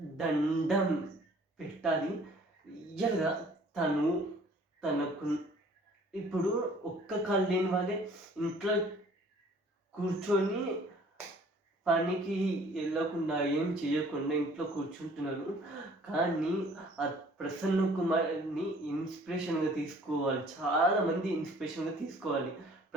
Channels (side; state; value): both; normal; correlation 0.54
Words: దండం పెట్టాలి. రియల్గా తనకు ఇప్పుడు ఒక్క కాలు లేని వాళ్ళే ఇంట్లో కూర్చొని పనికి వెళ్ళకుండా ఏం చేయకుండా ఇంట్లో కూర్చుంటున్నారు. కానీ ఆ ప్రసన్న కుమార్ని ఇన్స్పిరేషన్గా తీసుకోవాలి. చాలామంది ఇన్స్పిరేషన్గా తీసుకోవాలి